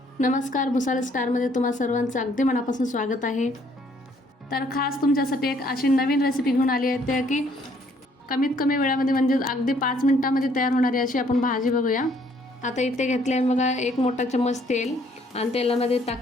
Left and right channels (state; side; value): normal; both; correlation 0.64